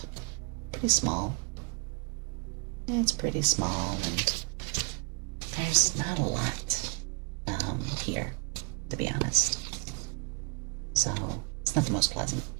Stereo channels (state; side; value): quieter; left; 33.9 dB